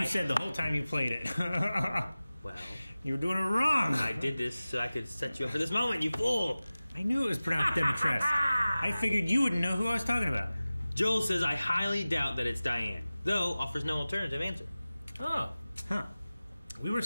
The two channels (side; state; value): both; inverted; correlation -0.97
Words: you said the whole time you played it. Well, you were doing it wrong. I did this so I could set you up for this moment, you fool. I knew it was pronounced Dimitrescu. I figured you wouldn't know who I was talking about. Joel says I highly doubt that it's Diane, though offers no alternative answer. Oh. Huh. We were